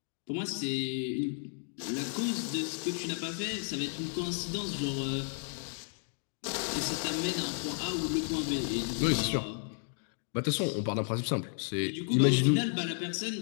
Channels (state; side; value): silent; right; 56 dB below the other